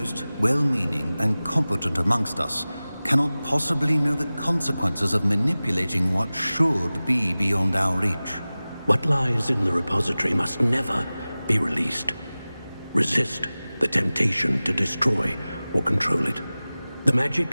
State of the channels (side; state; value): both; inverted; correlation -0.98